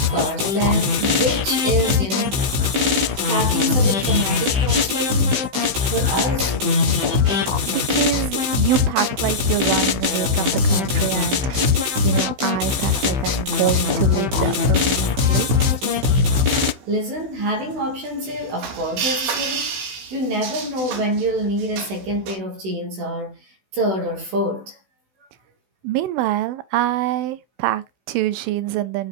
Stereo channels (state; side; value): late; left; 15 ms